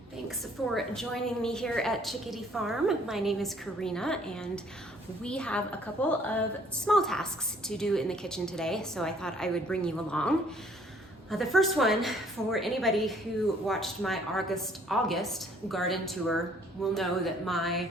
Thanks for joining me here at Chickadee Farm. My name is Karina and we have a couple of small tasks to do in the kitchen today, so I thought I would bring you along. The first one, for anybody who watched my August garden tour, will know that my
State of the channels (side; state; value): both; normal; correlation 0.60